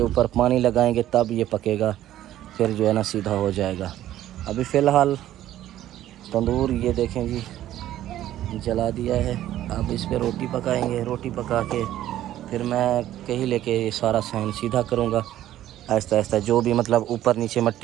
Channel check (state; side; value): quieter; left; 13.0 dB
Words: ऊपर पानी लगाएंगे तब ये पकेगा, फिर जो है ना सीधा हो जाएगा। अभी फ़िलहाल तंदूर ये देखें जी जला दिया है। अब इस पर रोटी पकाएंगे, रोटी पका के फिर मैं कहीं लेके ये सारा सहन सीधा करूँगा। आहिस्ता आहिस्ता जो भी मतलब ऊपर नीचे